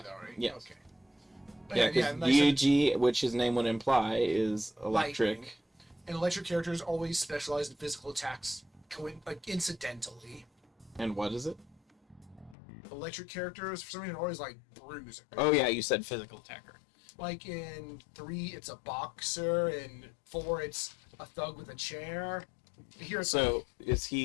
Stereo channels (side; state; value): right; drops out; at 12.6 s